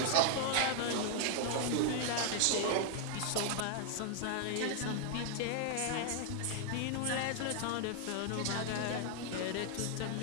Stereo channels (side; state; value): both; different; correlation 0.00